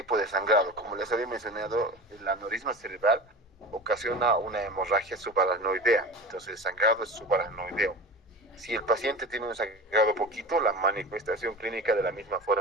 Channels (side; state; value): both; normal; correlation 0.32